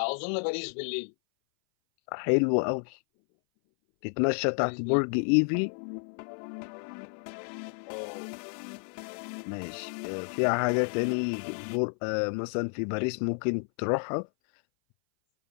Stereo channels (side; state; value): right; silent; 58 dB below the other